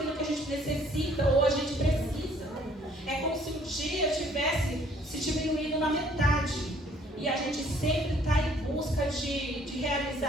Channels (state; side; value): normal; both; correlation 0.60